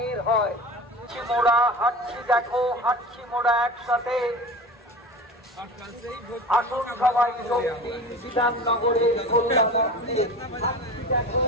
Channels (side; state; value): both; normal; correlation 0.34